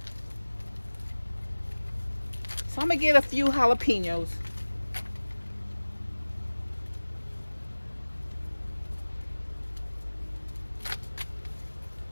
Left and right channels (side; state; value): both; inverted; correlation -1.00